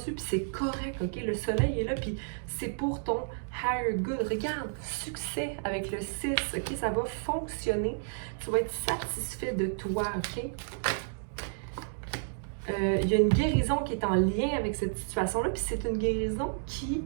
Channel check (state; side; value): silent; left; digital silence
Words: puis c'est correct, OK? Le soleil est là, puis c'est pour ton higher good. Regarde, succès avec le 6, OK? Ça va fonctionner. Tu vas être satisfait de toi, OK? Il y a une guérison qui est en lien avec cette situation-là, puis c'est une guérison qui